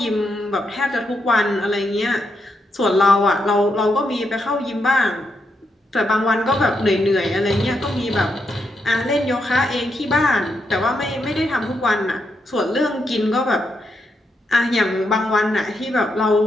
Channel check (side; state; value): both; normal; correlation 0.81